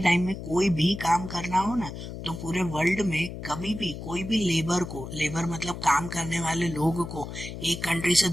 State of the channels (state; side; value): noise; left; hum, 9 dB below the sound